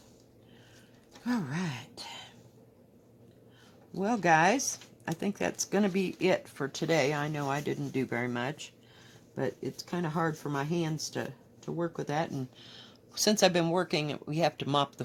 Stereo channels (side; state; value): both; identical; correlation 1.00